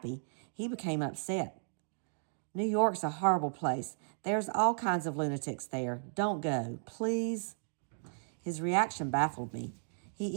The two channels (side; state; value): left; silent; digital silence